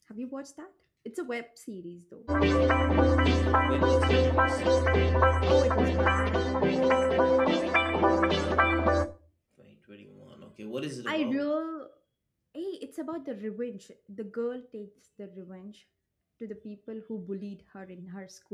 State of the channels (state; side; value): identical; both; correlation 1.00